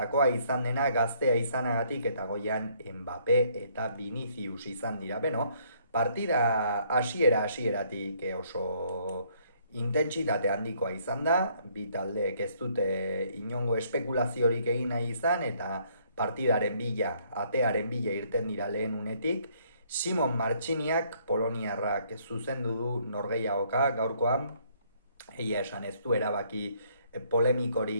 izan dena, gaztea izanagatik, eta goian Mbappé eta Vinicius izan dira. Beno, partida hasieratik oso intentsitate handikoa izan da, bi taldeek ez dute inongo espekulaziorik egin nahi izan, eta partidaren bila, atearen bila irten dira lehen unetik. Simon Martxiniak, poloniarrak zuzendu du norgehiagoka gaurkoan, egia esan ez du erabaki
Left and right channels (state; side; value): inverted; both; correlation -0.66